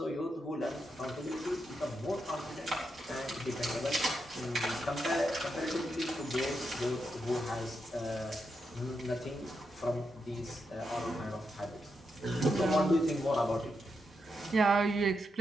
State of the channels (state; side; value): normal; both; correlation 0.84